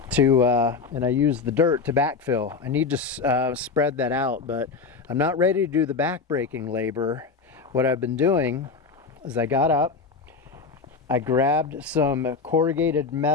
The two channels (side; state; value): right; quieter; 4.8 dB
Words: and I use the dirt to backfill. I need to spread that out, but I'm not ready to do the backbreaking labor. What I've been doing is I got up, I grabbed some corrugated